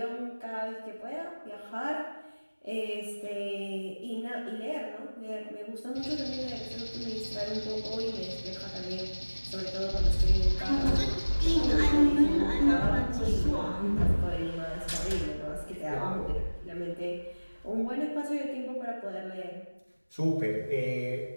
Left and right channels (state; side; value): inverted; both; correlation -1.00